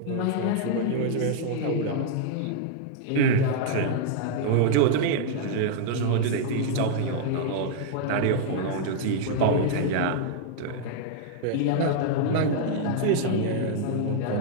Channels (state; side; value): different; both; correlation -0.01